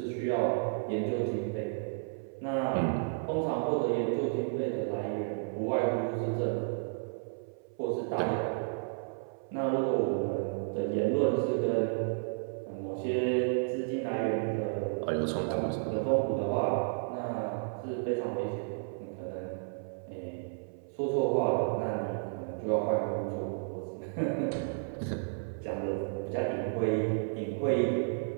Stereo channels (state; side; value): silent; left; 56 dB below the other